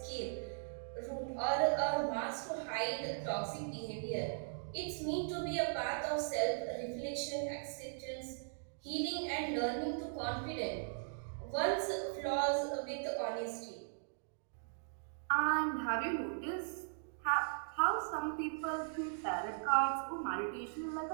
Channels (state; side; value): silent; left; digital silence